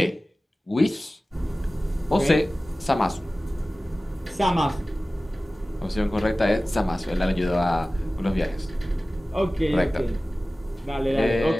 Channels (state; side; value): normal; both; correlation 0.97